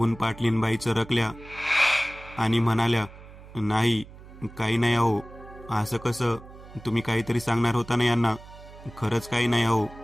पाटलीनबाई चरकल्या आणि म्हणाल्या, नाही, काही नाही अहो. असं कसं, तुम्ही काहीतरी सांगणार होता ना यांना. खरंच काही नाही अहो.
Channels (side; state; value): right; noise; hum, 18 dB below the sound